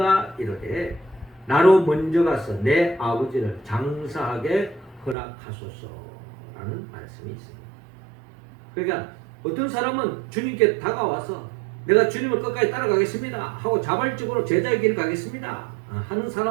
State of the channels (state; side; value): drops out; left; at 5.2 s